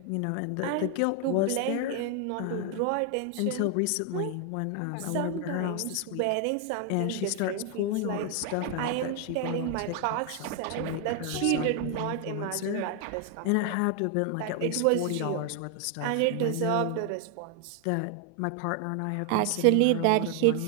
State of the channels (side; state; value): both; different; correlation 0.00